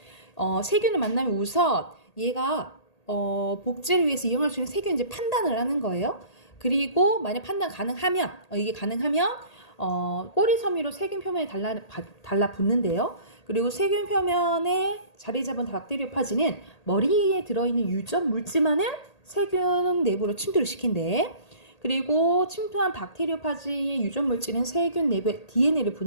세균을 만나면 우선 얘가 복제를 위해서 이용할 수 있는 세균인지 판단을 하는 거예요. 그리고 만약 판단 가능하면 이게 가능하면 꼬리 섬유로 세균 표면에 달라붙는데요. 그리고 세균 표면에 자리 잡은 박테리오파지는 머리에 들어있는 유전 물질만을 세균 내부로 침투를 시킨대. 그리고 침투한 박테리오파지의 유전 물질은 세균 내부의 DNA를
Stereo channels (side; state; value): right; late; 1.8 ms